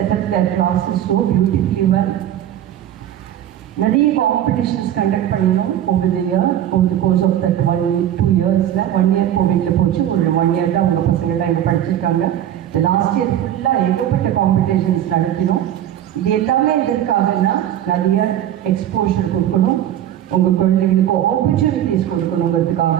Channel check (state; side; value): quieter; left; 11.3 dB